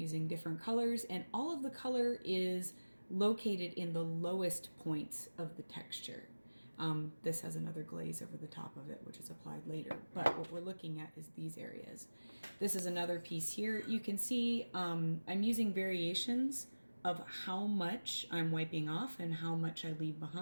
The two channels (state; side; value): inverted; both; correlation -1.00